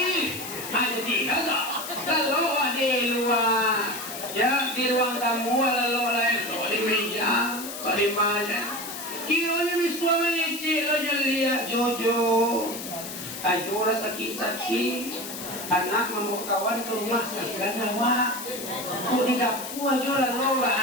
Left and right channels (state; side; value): noise; left; hiss, 9 dB below the sound